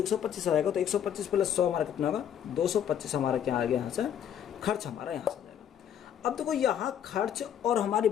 आएगा, तो 125 प्लस 100 हमारा कितना होगा, 225 हमारा क्या आ गया यहाँ से, खर्च हमारा यहाँ से जाएगा। अब देखो यहाँ खर्च और हमारी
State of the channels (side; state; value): right; quieter; 9.4 dB